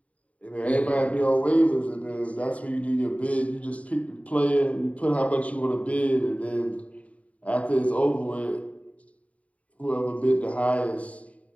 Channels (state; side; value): late; right; 0.067 ms